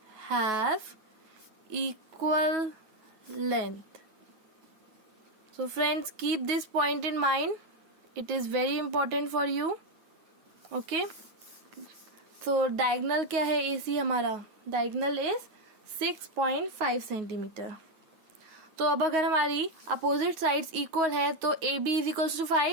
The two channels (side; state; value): left; late; 9.3 ms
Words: have equal length. So friends, keep this point in mind. It is very important for you. Okay. So diagonal क्या है AC हमारा? Diagonal is 6.5 centimetre. तो अब अगर हमारी opposite sides equal है तो A B is equals to